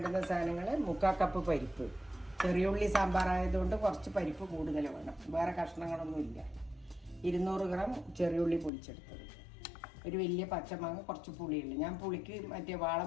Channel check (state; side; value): drops out; right; at 8.7 s